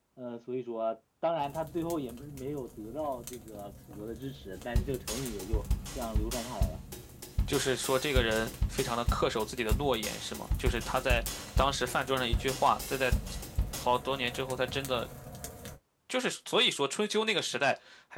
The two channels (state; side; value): identical; both; correlation 1.00